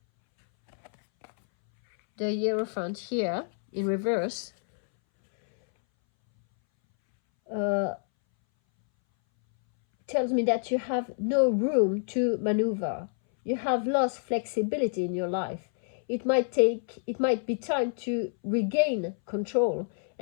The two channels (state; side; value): silent; right; 60 dB below the other